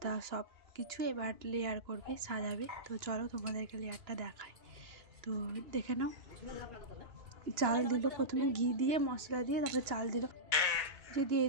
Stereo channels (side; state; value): left; late; 2.9 ms